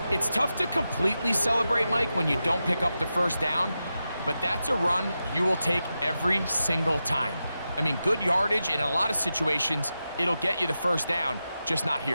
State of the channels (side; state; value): both; inverted; correlation -0.90